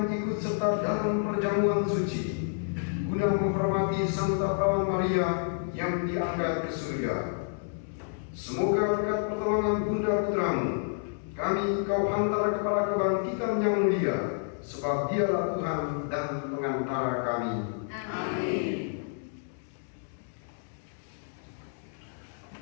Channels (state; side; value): silent; right; digital silence